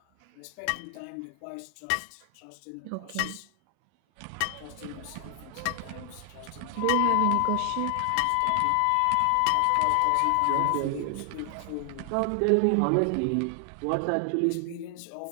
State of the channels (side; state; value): both; different; correlation 0.00